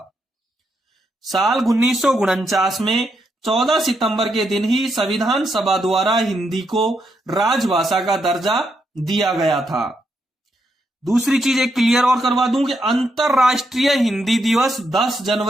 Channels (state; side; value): normal; both; correlation 0.80